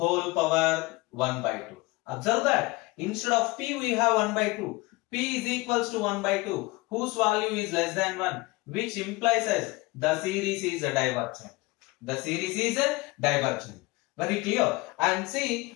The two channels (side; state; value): right; quieter; 23.2 dB